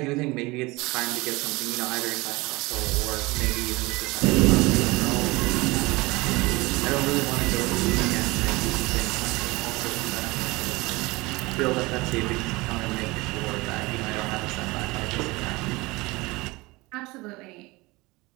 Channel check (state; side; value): quieter; left; 22.7 dB